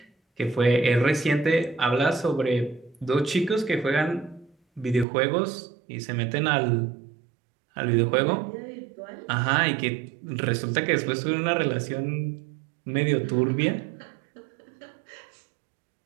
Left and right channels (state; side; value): drops out; left; at 5.1 s